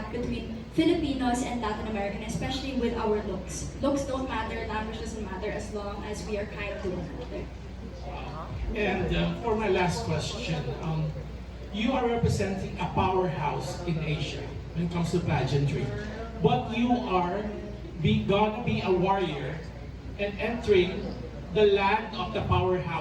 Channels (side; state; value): both; identical; correlation 1.00